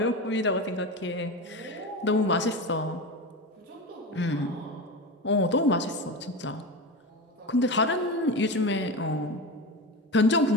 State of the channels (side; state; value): both; normal; correlation 0.23